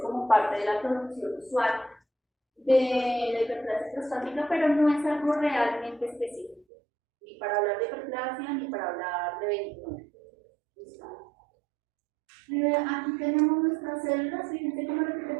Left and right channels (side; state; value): left; drops out; at 6.7 s